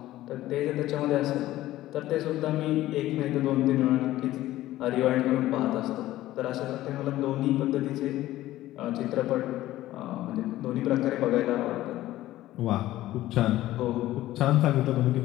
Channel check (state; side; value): quieter; right; 15.3 dB